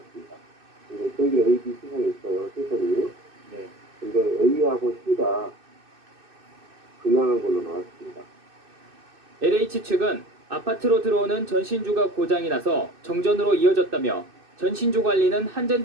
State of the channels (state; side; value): late; left; 2.6 ms